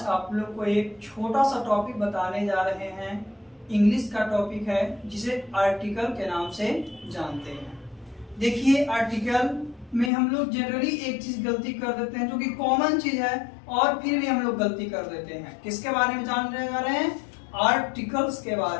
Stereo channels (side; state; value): right; drops out; at 10.1 s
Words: आप लोग को एक छोटा सा टॉपिक बताने जा रहे हैं। इंग्लिश का टॉपिक है जिसे आर्टिकल के नाम से जानते हैं। देखिए, आर्टिकल में हम लोग जनरली एक चीज गलती कर देते हैं जो कि कॉमन चीज है, और फिर भी हम लोग गलती कर देते हैं। किसके बारे में जानने जा रहे हैं? आर्टिकल्स के